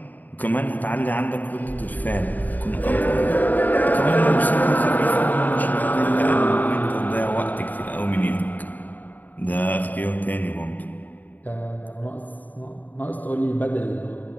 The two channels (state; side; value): late; right; 0.084 ms